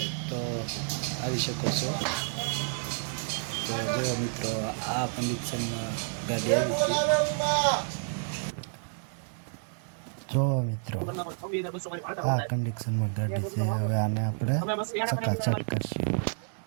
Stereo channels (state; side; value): silent; left; digital silence